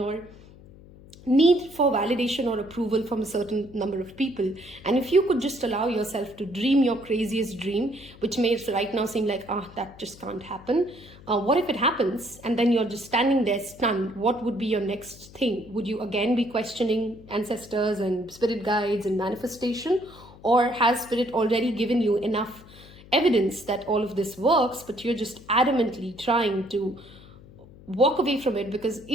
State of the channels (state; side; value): noise; left; hum, 21 dB below the sound